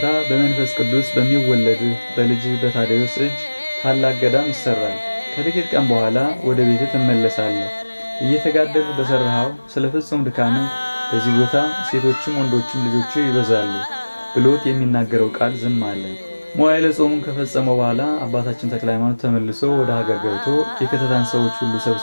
በመንፈስ ቅዱስ በሚወለድህ በልጅህ በታዴዎስ እጅ ታላቅ ገዳም ይሰራል። ከጥቂት ቀን በኋላ ወደ ቤትህ ትመለሳለህ። እየተጋደልህ በሰራኸው ስለ ፍጹም ድካምህ በዚህ ቦታ ሴቶችም ወንዶችም ልጆች ይበዛሉ ብሎት የሚናገረው ቃል ዝም አለ። መዋዕለ ጾሙን ከፈጸመው በኋላ አባታችን ተክለ ሃይማኖት ተመልሶ ወደ ሀገር ገብቶ የከተታን ሰዎች ሁሉ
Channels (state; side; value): inverted; both; correlation -1.00